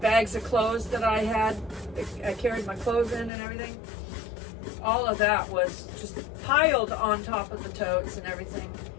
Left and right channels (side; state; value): right; drops out; at 3.3 s